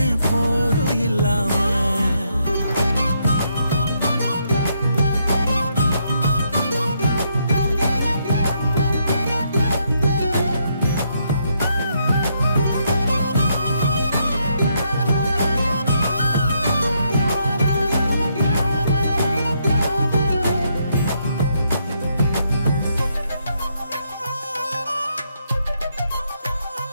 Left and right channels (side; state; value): both; inverted; correlation -0.76